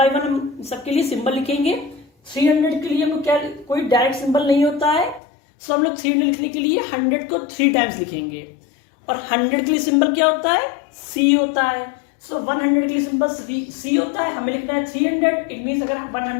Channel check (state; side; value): drops out; right; at 5.2 s